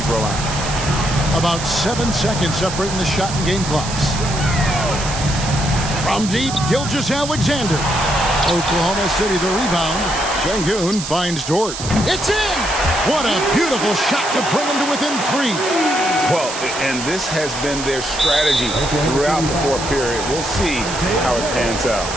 throw line. About 7 seconds separating the shot and game clocks. From deep, Gilgeous-Alexander. Oklahoma City the rebound. Sengun finds Dort. It's in! What a beautiful shot to bring him to within 3. Well, and this has been their strategy throughout the fourth period. We'll see how it pans out.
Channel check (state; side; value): noise; right; hiss, 8 dB below the sound